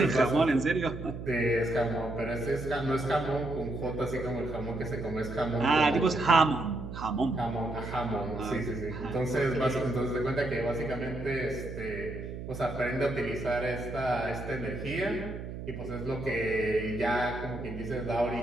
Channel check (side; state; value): right; noise; hum, 8 dB below the sound